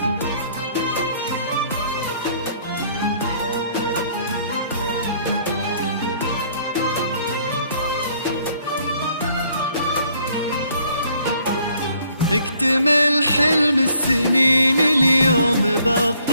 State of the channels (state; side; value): inverted; both; correlation -0.64